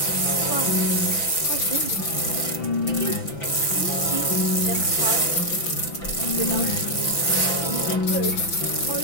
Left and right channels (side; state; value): right; late; 5.9 ms